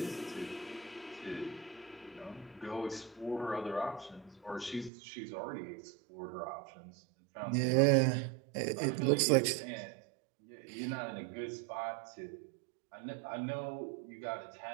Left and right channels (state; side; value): drops out; left; at 4.9 s